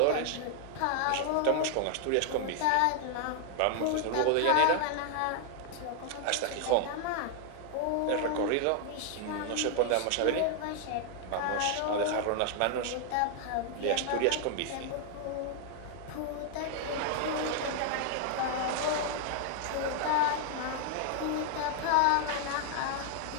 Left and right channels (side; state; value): both; different; correlation 0.00